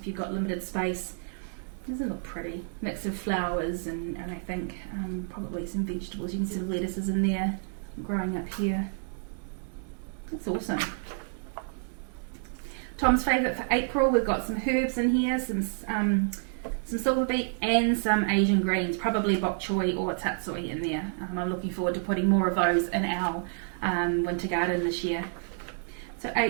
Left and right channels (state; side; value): silent; left; 58 dB below the other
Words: you've got limited space, doesn't it look pretty? Mix of flowers and I think probably some vegetables. You can see some lettuces in there growing up here. That's awesome. Tom's favourite for April, we've got some herbs in here, some silver beet and some Asian greens, probably bok choy or tatsoi in there. I'm looking forward to putting more of those in our winter garden this year. So